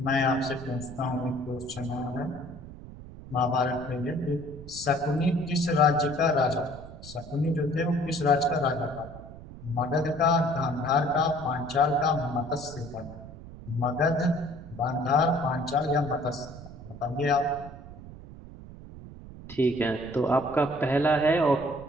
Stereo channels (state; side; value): noise; right; rumble, 15 dB below the sound